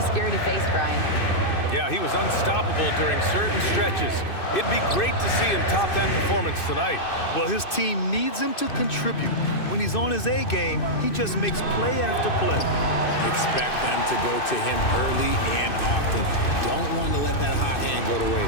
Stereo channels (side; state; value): right; late; 2.6 ms